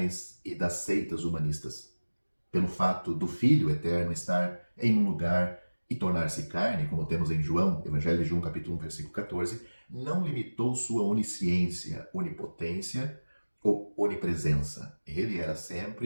e das seitas humanistas. Pelo fato do Filho eterno estar em um lugar e tornar-se carne, como temos em João, Evangelho de João, capítulo 1, versículo 14, não limitou sua onisciência, onipotência ou onipresença. Ele era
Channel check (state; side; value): inverted; both; correlation -1.00